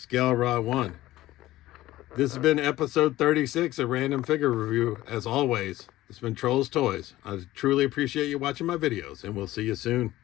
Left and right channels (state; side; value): quieter; right; 16.1 dB